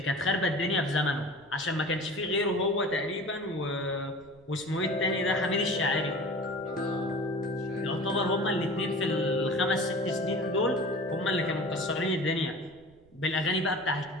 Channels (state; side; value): noise; right; rumble, 28 dB below the sound